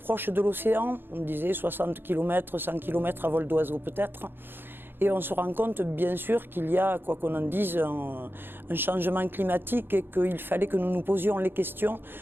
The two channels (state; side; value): late; left; 0.10 ms